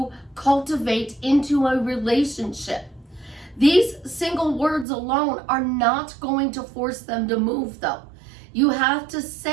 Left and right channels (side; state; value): left; drops out; at 4.9 s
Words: cultivate into a relationship? These single words alone are not going to force them to move, though. You have to